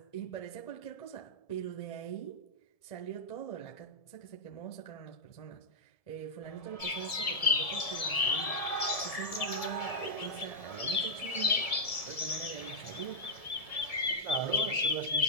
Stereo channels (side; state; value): right; late; 1.7 ms